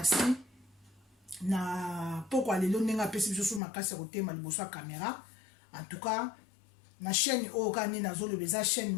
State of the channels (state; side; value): drops out; right; at 3.6 s